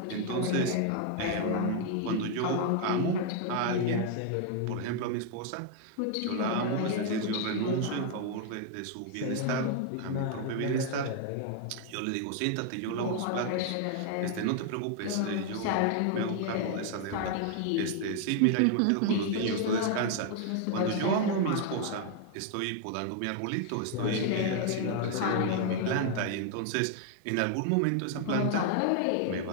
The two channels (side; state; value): both; different; correlation 0.00